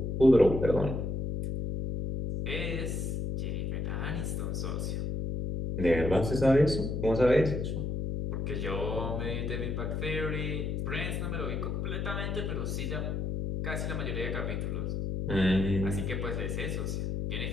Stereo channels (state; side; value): noise; left; hum, 2 dB below the sound